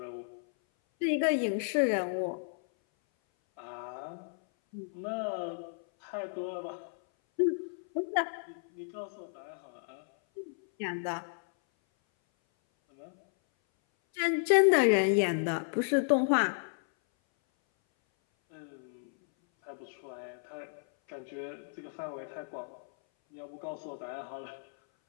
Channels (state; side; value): silent; right; 56 dB below the other